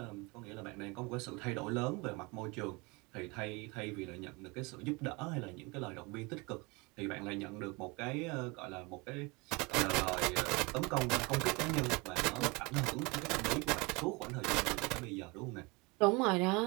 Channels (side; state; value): left; quieter; 27.1 dB